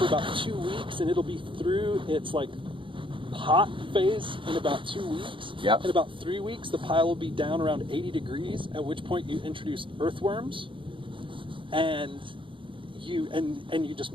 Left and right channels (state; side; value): late; left; 0.25 ms